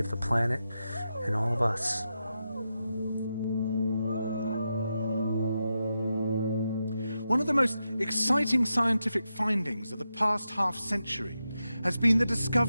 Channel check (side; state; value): both; inverted; correlation -0.88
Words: the planet and all of us. One of the most exciting scientific findings of the past half-century has been the